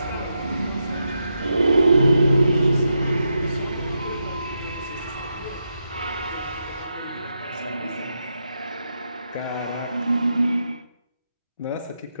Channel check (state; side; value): inverted; both; correlation -0.85